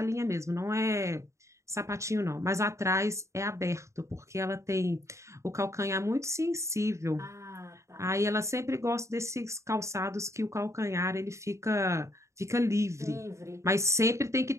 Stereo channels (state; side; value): late; left; 0.14 ms